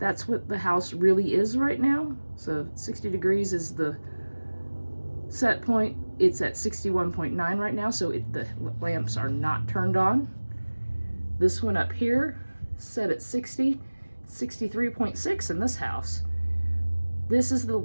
what the house really is right now. So 60 degrees is the set point. It's at 61.9 right now, so the lamps are not turned on. This one up here, set at 60, 63.6 in this house. This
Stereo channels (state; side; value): inverted; both; correlation -1.00